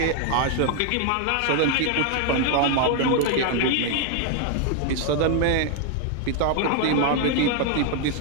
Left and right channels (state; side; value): different; both; correlation 0.00